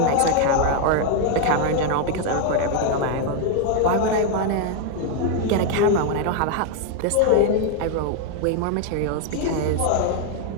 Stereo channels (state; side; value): different; both; correlation 0.01